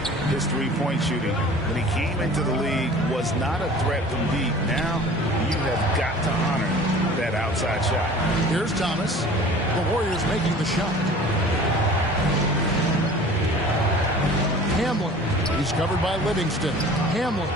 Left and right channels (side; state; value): both; normal; correlation 0.44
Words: his three-point shooting. When he came into the league, was not a threat from deep. Now, you have got to honor that outside shot. Here's Thomas. The Warriors making the shot. Hamlin. He's covered by Livingston. Hamlin.